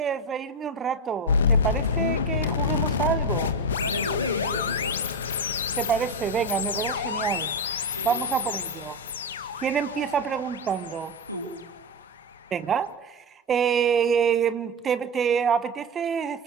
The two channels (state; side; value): normal; both; correlation 0.13